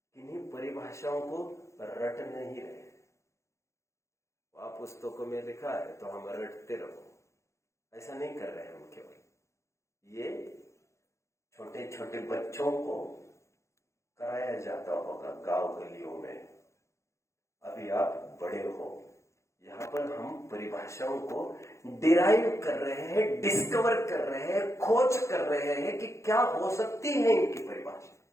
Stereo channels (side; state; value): right; late; 0.14 ms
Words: किन्हीं परिभाषाओं को रट नहीं रहे। आप पुस्तकों में लिखा है तो हम रटते रहो, ऐसा नहीं कर रहे हम। केवल ये छोटे छोटे बच्चों को कराया जाता होगा गांव गलियों में। अभी आप बड़े हो, यहाँ पर हम परिभाषाओं को डिराइव कर रहे हैं, डिस्कवर कर रहे हैं, खोज कर रहे हैं कि क्या हो सकती है इनकी परिभाषा।